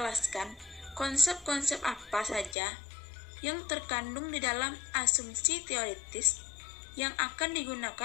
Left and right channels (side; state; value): right; drops out; at 2.6 s